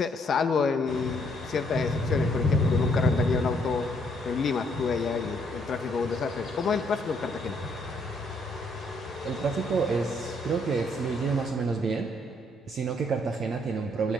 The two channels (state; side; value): normal; both; correlation 0.69